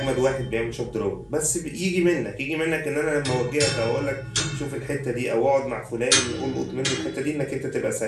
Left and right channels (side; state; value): both; identical; correlation 1.00